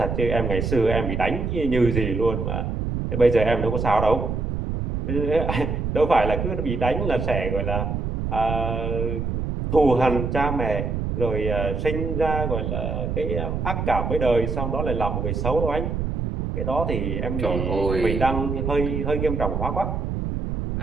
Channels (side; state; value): right; noise; rumble, 2 dB below the sound